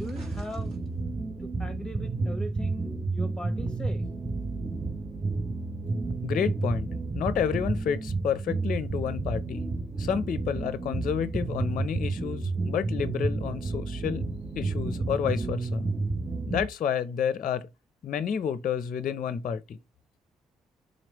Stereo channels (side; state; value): both; normal; correlation 0.72